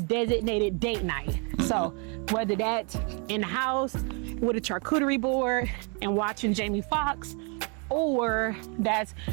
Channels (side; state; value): left; quieter; 35.7 dB